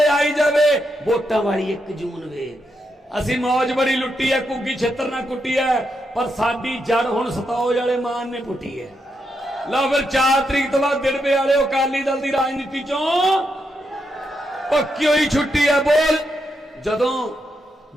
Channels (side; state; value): both; normal; correlation 0.82